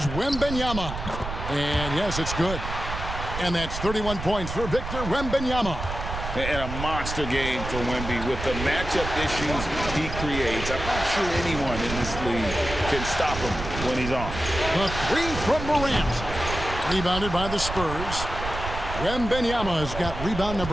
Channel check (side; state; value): right; noise; rumble, 7 dB below the sound